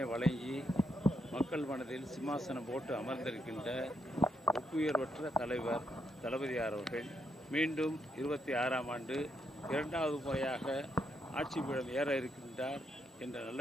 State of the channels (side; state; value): both; normal; correlation 0.79